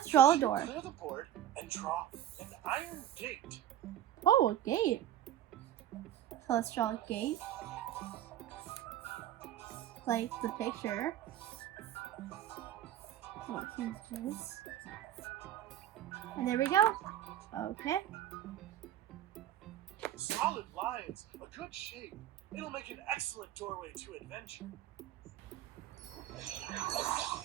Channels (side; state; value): left; quieter; 11.8 dB